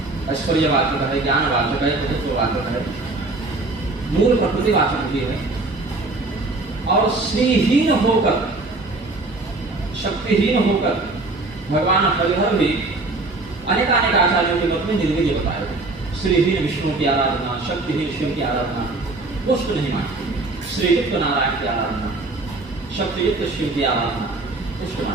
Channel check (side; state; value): left; quieter; 3.2 dB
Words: ऐश्वर्यवाचक है, ज्ञानवाचक है, तत्ववाचक है, मूल प्रकृतिवाचक भी है। और श्रीहीन होकर, शक्तिहीन होकर भगवान हरिहर भी अनेक आचार्यों के मत में निर्वीर्य बताए। श्रीहीन विष्णु की आराधना, शक्तिहीन शिव की आराधना पुष्ट नहीं मानती, श्रीयुक्त नारायण की आराधना, शक्तियुक्त शिव की आराधना पुष्ट